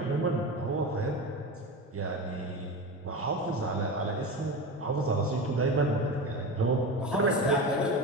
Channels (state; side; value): normal; both; correlation 0.25